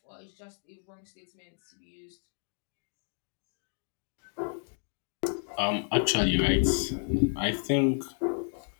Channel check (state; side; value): silent; right; 57 dB below the other